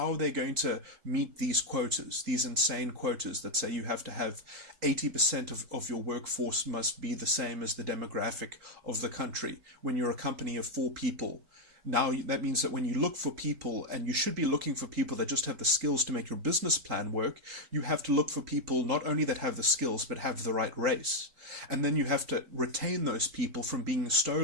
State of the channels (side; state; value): left; late; 4.3 ms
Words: are they going to meet these quotas, these insane quotas that say you have to have 80% of your workforce must be the same as the demographic of the country when you're a company of 4 people? Now, that means that when you look for people, and you should be looking for people that just have the skills to make your business plan work, you have to look for people not only that have the skills, but have the right race. And then you have to retain those people from being